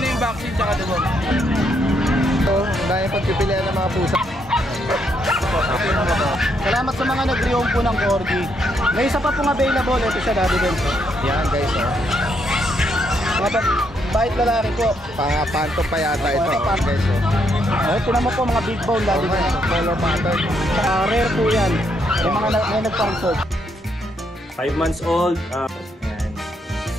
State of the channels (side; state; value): both; normal; correlation 0.75